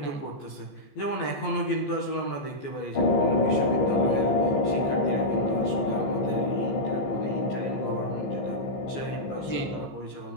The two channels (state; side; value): late; right; 14 ms